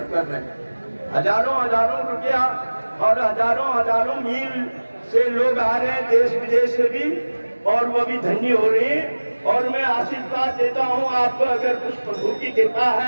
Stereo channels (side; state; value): both; inverted; correlation -1.00